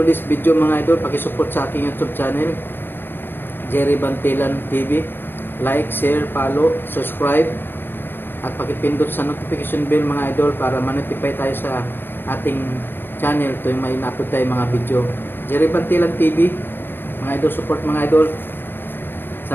video mga idol, pakisupport sa aking YouTube channel, Jerry Bantilan TV. Like, share, follow, subscribe, at pakipindot sa notification bell mga idol para ma-notify tayo sa ating channel tuwing may na-upload tayo mga video. Jerry Bantilan TV, mga idol, support mga idol.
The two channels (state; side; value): late; right; 0.097 ms